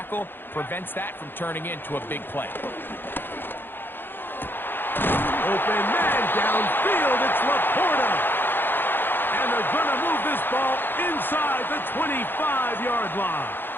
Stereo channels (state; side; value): late; right; 0.099 ms